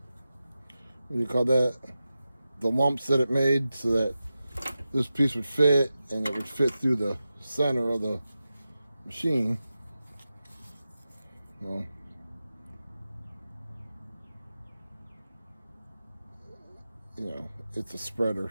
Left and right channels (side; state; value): both; inverted; correlation -0.92